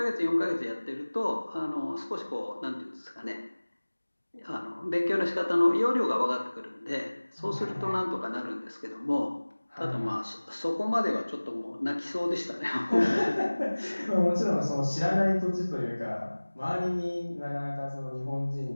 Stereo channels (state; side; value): inverted; both; correlation -1.00